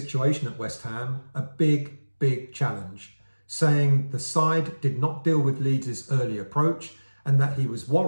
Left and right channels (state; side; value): inverted; both; correlation -1.00